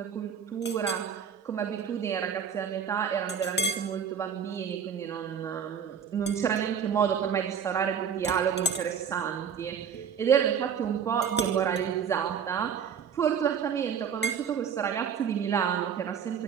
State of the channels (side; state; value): left; quieter; 7.4 dB